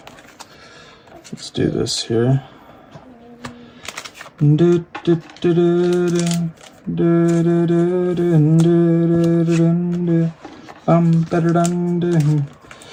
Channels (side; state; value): both; identical; correlation 1.00